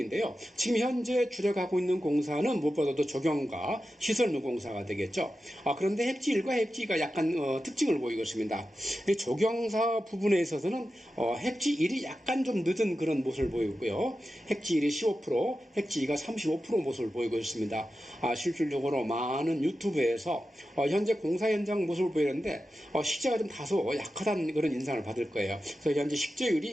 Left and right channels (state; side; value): normal; both; correlation 0.92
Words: 지금 현재 주력하고 있는 공사는 무엇보다도 조경과 시설물 공사가 되겠죠. 그런데 heb지 1과 heb지 2가 약간 특징을 보이고 있습니다. 조경사 부분에 있어서는 heb지 1이 약간 좀 늦은 그런 모습을 보이고 있고요. heb지 1이 15%, heb지 2가 35% 모습을 보이고 있습니다. 실질적으로 많은 유튜브에서 현재 공사 현장 모습을 보이는데 식재가 좀 다소 약하다는 그런 인상을 받을 거예요. 그래서 현재